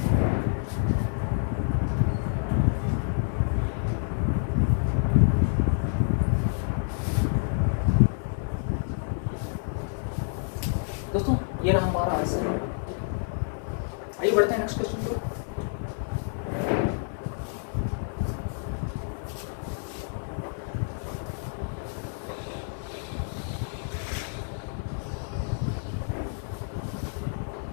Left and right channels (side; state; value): right; silent; digital silence